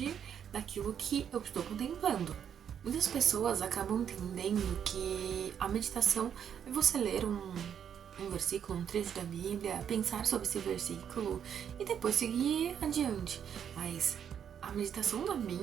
daquilo que eu estou contemplando. Muitas pessoas acabam entendendo que a meditação é você ler um versículo, um trecho da Bíblia, pensar sobre esse versículo e depois seguir adiante. Mas a meditação da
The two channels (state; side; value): quieter; left; 8.5 dB